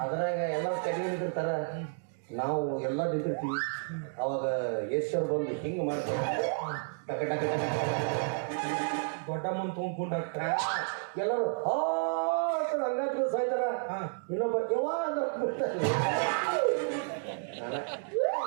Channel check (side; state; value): left; silent; digital silence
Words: ಅದ್ರಾಗ ಎಲ್ಲರೂ ಕಡಿಮೆ ನಿಂತಿರ್ತಾರ ನಾವು ಎಲ್ಲ ನಿಂತಿರ್ತೀವಿ ಅವಾಗ ಯಶ್ವರ್ ಬಂದು ಹಿಂಗೆ ಮಾಡ್ತಾರೆ ಟಕ ಟಕ ಟಕ ದೊಡ್ಡ ಮುಂದೆ ತುಂಬ್ಕೊಂಡು ಎಲ್ಲರೂ ಹಂಗಾದ್ರು ಸಾಯ್ತಾರ ಇನ್ನೊಬ್ಬ ಯವಾ ಅಂತ